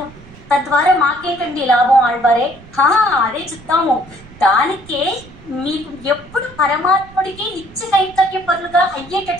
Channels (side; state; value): right; noise; rumble, 21 dB below the sound